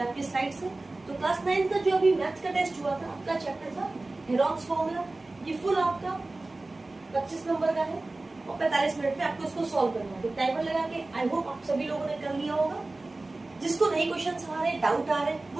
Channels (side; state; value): left; quieter; 3.1 dB